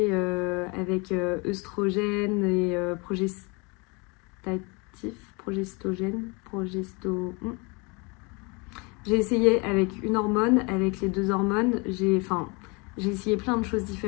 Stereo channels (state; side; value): quieter; right; 29.4 dB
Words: avec œstrogène et J'ai essayé avec une hormone, avec les 2 hormones. J'ai essayé plein de choses